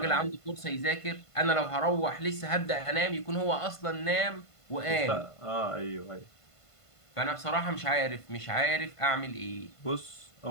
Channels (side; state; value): right; late; 1.5 ms